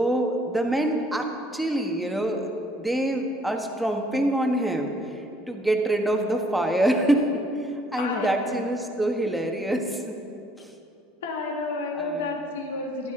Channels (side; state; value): both; normal; correlation 0.62